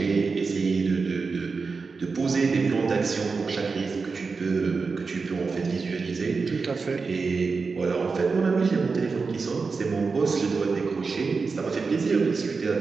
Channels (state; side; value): quieter; left; 4.6 dB